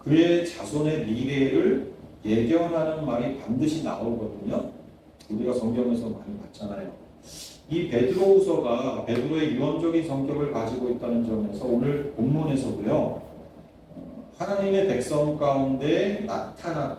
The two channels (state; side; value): identical; both; correlation 1.00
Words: 자손의 미래를 예견하는 말이 반드시 나오거든요. 우리가 성경에서 많이 봤잖아요. 이 베드로후서가 베드로의 유언적인 성격을 가지고 있다는 점에서 오늘 본문에서도요, 하나님의 백성 가운데